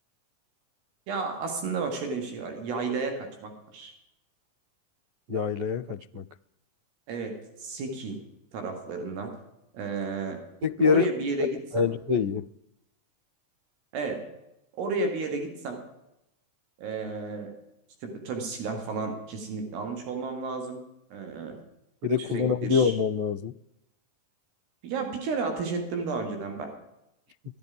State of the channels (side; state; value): left; late; 14 ms